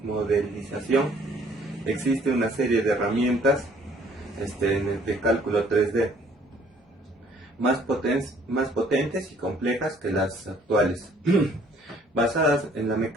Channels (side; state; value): both; normal; correlation 0.59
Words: modelización existe una serie de herramientas en el de cálculo 3D más potentes y complejas que las actuales, basadas en la